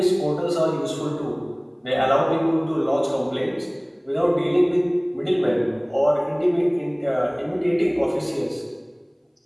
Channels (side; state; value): both; identical; correlation 1.00